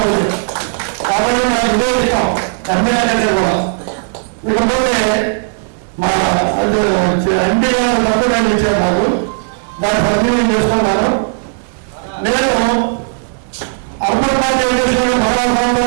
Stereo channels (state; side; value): silent; left; digital silence